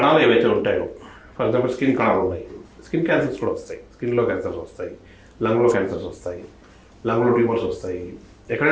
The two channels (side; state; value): both; identical; correlation 1.00